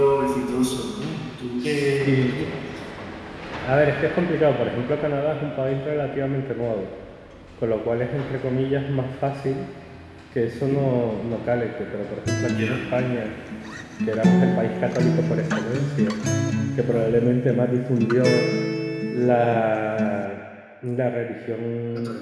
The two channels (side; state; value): both; identical; correlation 1.00